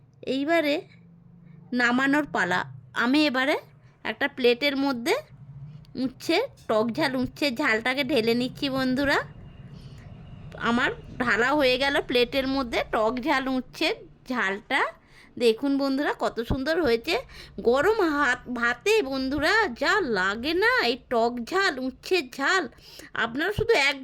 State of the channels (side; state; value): both; identical; correlation 1.00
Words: এইবারে নামানোর পালা। আমি এবারে একটা প্লেটের মধ্যে উচ্ছের ঝালটাকে ঢেলে নিচ্ছি বন্ধুরা। আমার ঢালা হয়ে গেল প্লেটের মধ্যে টক ঝাল উচ্ছের ঝালটা। দেখুন বন্ধুরা, কত সুন্দর হয়েছে। গরম ভাতে বন্ধুরা যা লাগে না এই টক ঝাল, উচ্ছের ঝাল, আপনারা শুধু